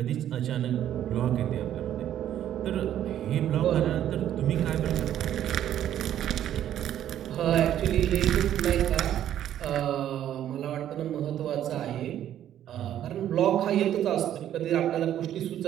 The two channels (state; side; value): quieter; left; 11.2 dB